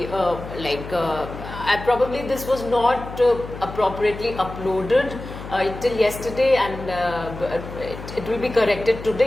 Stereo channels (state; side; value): noise; left; hum, 12 dB below the sound